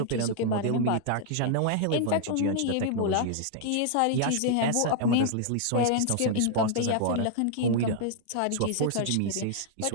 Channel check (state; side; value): different; both; correlation 0.00